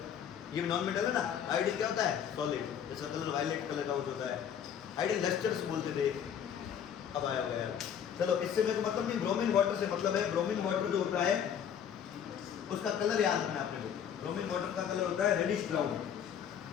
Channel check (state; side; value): quieter; right; 8.6 dB